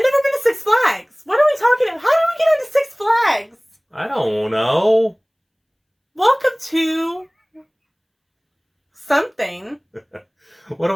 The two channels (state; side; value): identical; both; correlation 1.00